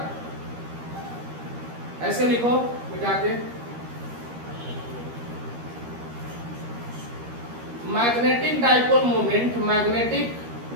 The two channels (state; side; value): late; left; 13 ms